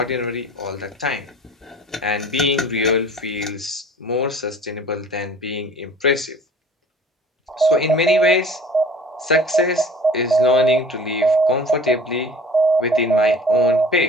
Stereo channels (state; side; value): normal; both; correlation 0.45